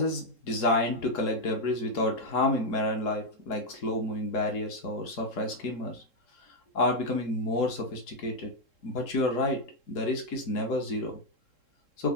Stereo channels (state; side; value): late; right; 3.7 ms